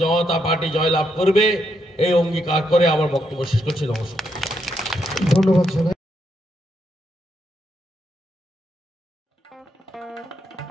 জনতা পার্টি জয়লাভ করবে, এই অঙ্গীকার করে আমার বক্তব্য শেষ করছি। নমস্কার, ধন্যবাদ।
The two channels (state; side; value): normal; both; correlation 0.79